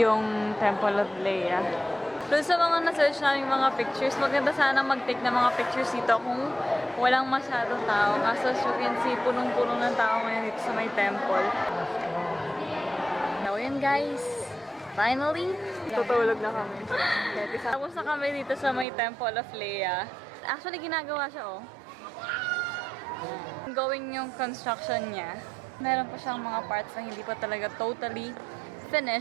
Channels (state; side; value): drops out; left; at 18.9 s